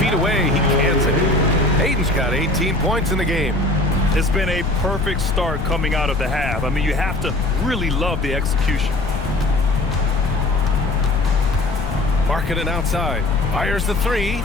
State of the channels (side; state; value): left; noise; rumble, 6 dB below the sound